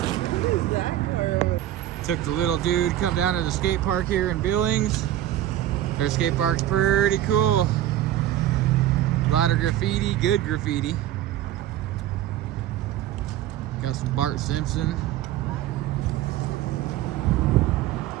Took the little dude, come down to the skate park here in Billings. Their skate park's pretty cool. A lot of graffiti, good graffiti. Got some Bart Simpson.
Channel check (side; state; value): left; quieter; 12.9 dB